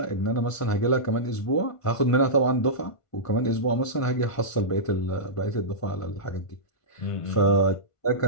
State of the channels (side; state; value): right; late; 1.5 ms